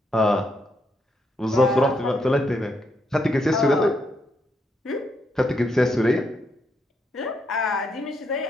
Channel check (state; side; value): normal; both; correlation 0.78